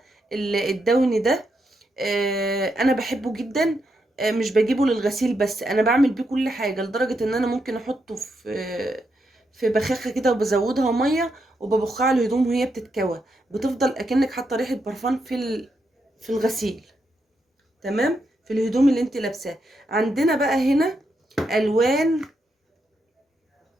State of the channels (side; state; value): both; normal; correlation 0.82